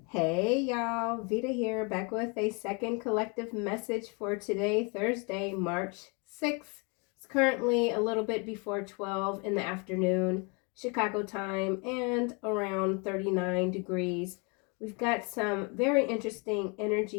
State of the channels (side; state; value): right; quieter; 32.7 dB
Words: Hey y'all, Veda here, back with a second collective message for today, Thursday, March 6th. It's currently a little bit before 12 in the afternoon, Chicago time, and around 39 degrees. We've got some very interesting